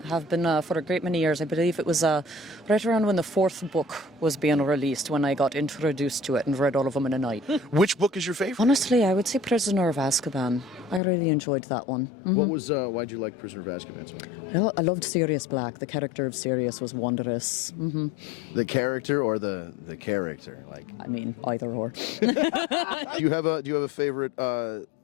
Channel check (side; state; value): right; drops out; at 11.0 s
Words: have been for a great many years. I believe it was right around when the 4th book was being released when I got introduced to it and read all of them in a night. Which book is your favorite? Honestly, I would say Prisoner of Azkaban. I really enjoyed that one. Mm-hmm. Why'd you like Prisoner of Azkaban so much? Well, I loved Sirius Black. The character of Sirius was wondrous. Mm-hmm. The character or the character? I mean, either or. Do you have a favorite